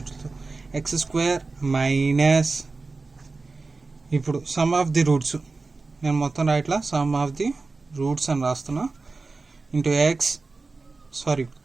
x² - ఇప్పుడు సమ్ ఆఫ్ ది రూట్స్ నేను మొత్తం రాయట్లా, సమ్ ఆఫ్ ది రూట్స్ అని రాస్తున్నా. Into x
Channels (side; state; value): left; quieter; 3.8 dB